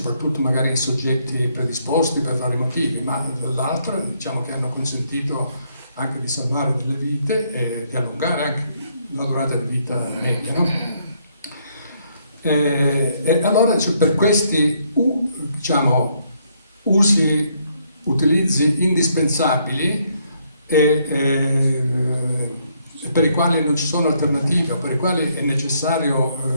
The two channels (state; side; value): inverted; both; correlation -0.71